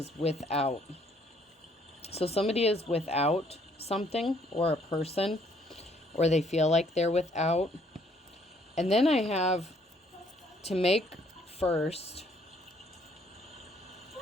without. So somebody is without something, or a person, or they feel like they're without. And then I have to make first.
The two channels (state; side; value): normal; both; correlation 0.65